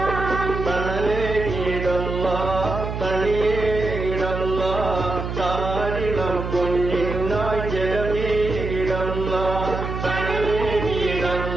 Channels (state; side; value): noise; right; hum, 5 dB below the sound